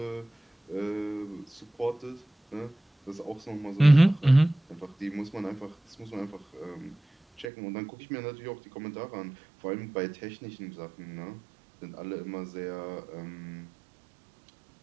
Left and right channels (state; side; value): drops out; left; at 7.5 s